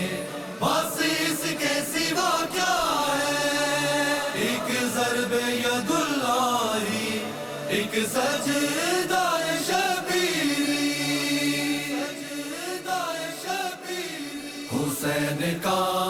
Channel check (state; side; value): identical; both; correlation 1.00